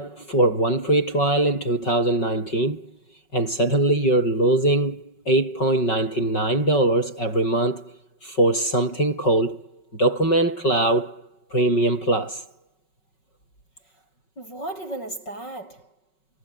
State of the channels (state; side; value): late; right; 5.4 ms